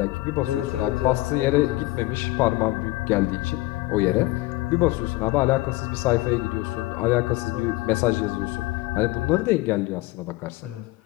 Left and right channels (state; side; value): quieter; right; 19.5 dB